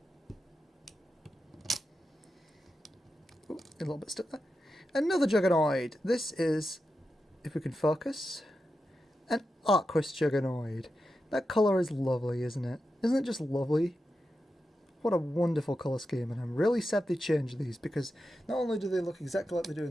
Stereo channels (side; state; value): both; normal; correlation 0.89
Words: Ooh, a little bit stuck there. Another Juggernoid. This is, if we can focus, an Arquus Juggernoid. That colour is lovely, isn't it? Isn't it just lovely? What a wonderful colour scheme, and I'm really sad they changed these, because not only do they look exactly like they do in